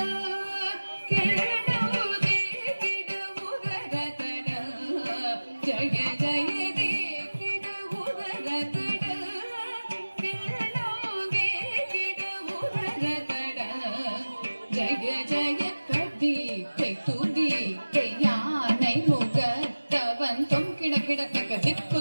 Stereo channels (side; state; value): both; inverted; correlation -1.00